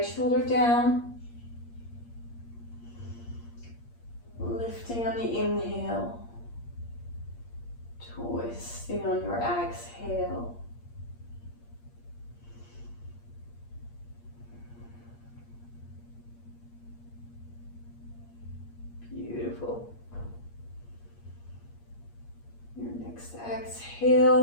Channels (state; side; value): late; right; 8.5 ms